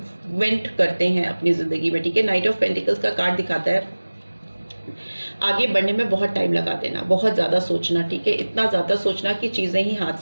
करते हैं अपनी ज़िंदगी में, ठीक है। नाइट ऑफ पेंटिकल्स का कार्ड दिखाता है आगे बढ़ने में बहुत टाइम लगा देना, बहुत ज़्यादा सोचना, ठीक है, इतना ज़्यादा सोचना कि चीज़ें ही हाथ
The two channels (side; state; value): both; inverted; correlation -1.00